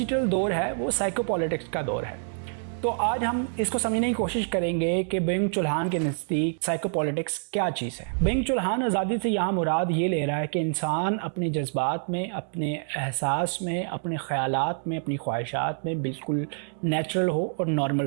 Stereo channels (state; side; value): silent; left; digital silence